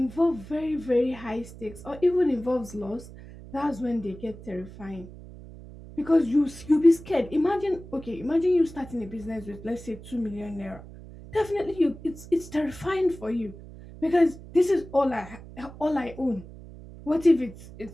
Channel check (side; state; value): right; noise; hum, 16 dB below the sound